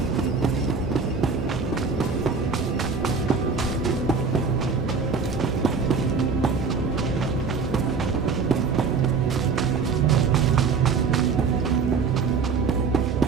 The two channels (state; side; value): quieter; left; 5.1 dB